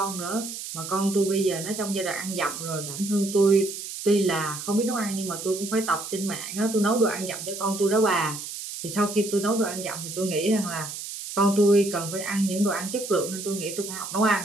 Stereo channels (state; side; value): noise; right; hiss, 8 dB below the sound